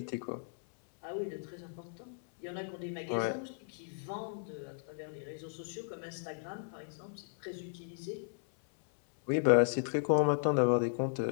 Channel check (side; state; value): right; silent; 54 dB below the other